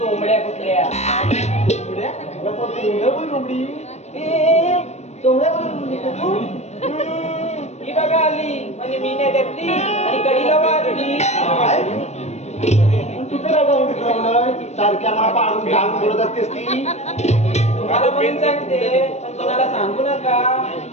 कुठल्या ही बघा आली म्हणजे मी नाही घेतली आणि कडीला वाजली सारख्या मला पाडून घालून बोलत असतेस ती तुम्हाला म्हणून सांगते पण कोणाला सांगू नका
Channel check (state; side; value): late; right; 0.32 ms